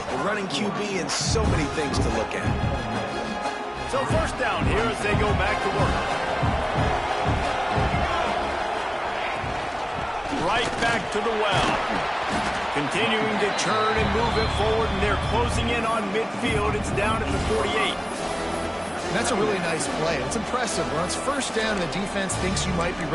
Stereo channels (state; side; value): identical; both; correlation 1.00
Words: the running QB and so many things to look at. So first down here as they go back to work. Right back to the well. Continuing to churn and move it forward, and they're closing in on midfield. It's down at the 48. And that's a really nice play. It's impressive. When it's first down and the defense thinks you might be